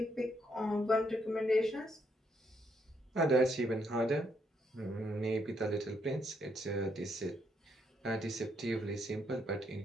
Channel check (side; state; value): both; normal; correlation 0.74